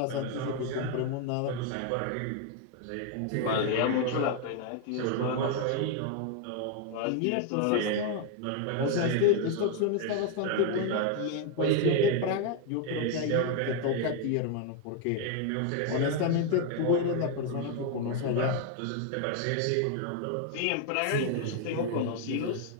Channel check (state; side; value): different; both; correlation 0.00